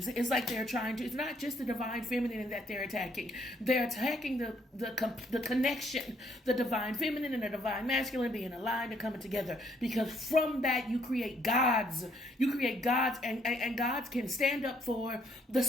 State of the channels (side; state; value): both; normal; correlation 0.68